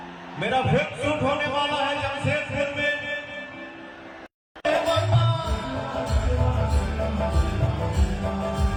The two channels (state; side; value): identical; both; correlation 1.00